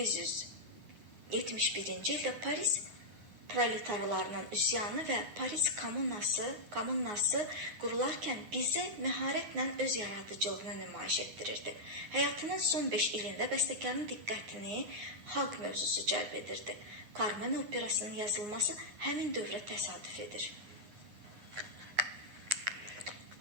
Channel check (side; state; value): left; late; 9.6 ms